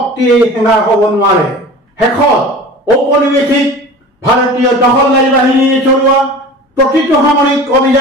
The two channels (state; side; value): normal; both; correlation 0.38